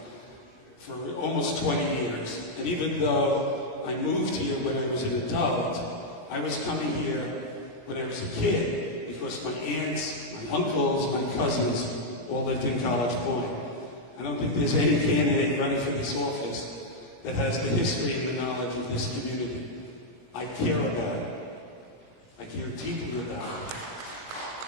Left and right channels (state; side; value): late; right; 17 ms